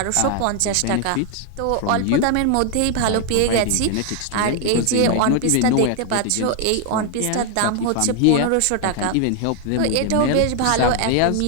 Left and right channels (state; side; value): different; both; correlation 0.00